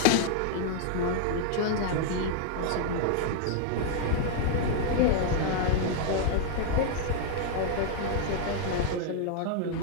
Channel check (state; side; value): different; both; correlation 0.00